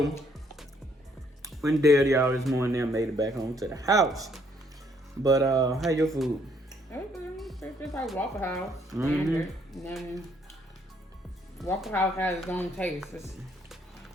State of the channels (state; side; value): normal; both; correlation 0.68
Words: when there, y'all, this morning, I made it back home to the house. But, how your food? It's just like Waffle House. And then Waffle House has its own taste.